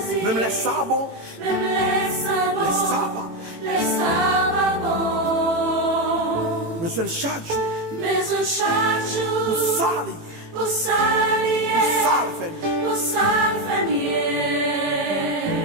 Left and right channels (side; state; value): left; late; 18 ms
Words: Même les sabots. même les sabots, Les sabbats. les sabbats bons. Besoin de chaque jour. Mais oh chaque jour, Pour salir. pour salir, Pour salir famille. pour salir famille.